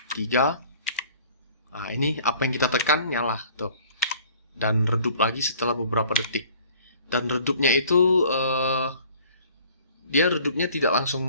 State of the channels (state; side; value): inverted; both; correlation -0.52